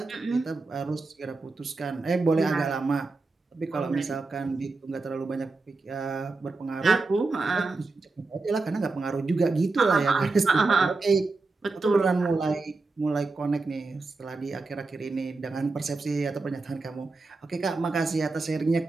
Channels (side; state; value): left; quieter; 3.7 dB